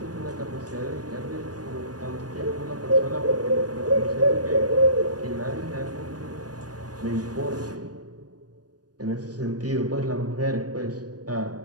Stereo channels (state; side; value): late; left; 0.68 ms